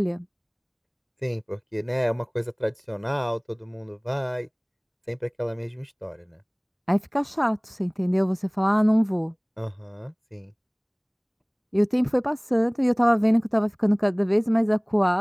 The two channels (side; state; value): both; identical; correlation 1.00